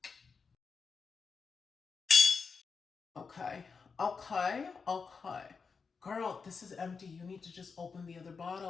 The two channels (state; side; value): quieter; right; 5.2 dB